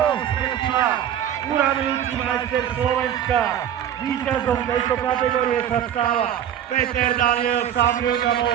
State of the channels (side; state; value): left; quieter; 10.2 dB